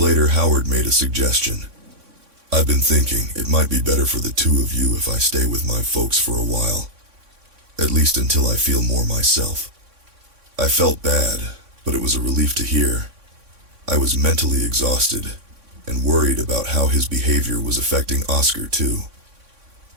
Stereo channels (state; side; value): late; left; 3.6 ms